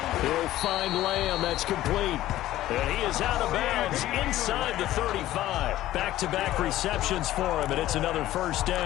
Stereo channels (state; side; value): quieter; right; 14.6 dB